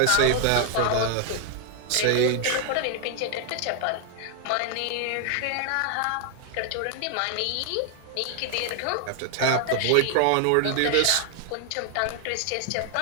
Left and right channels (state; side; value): different; both; correlation 0.00